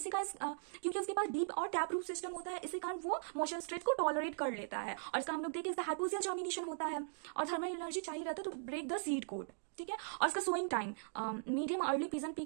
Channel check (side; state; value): left; silent; digital silence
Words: का क्योंकि उसके पास डीप और टैप रूट सिस्टम होता है, इसी कारण वो मॉइस्चर स्ट्रेस को टॉलरेट कर लेता है। और इसका हम लोग देखें इसका हाइपोक्सियल जर्मिनेशन होता है और थर्मल एनर्जी चाहिए रहता है to break the seed coat, ठीक है। और इसका sowing time medium early pigeon pea